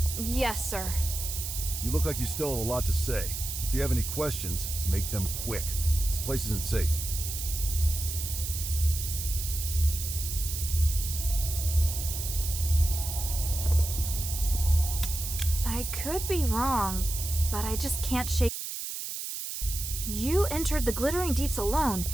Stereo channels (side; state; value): right; noise; hiss, 5 dB below the sound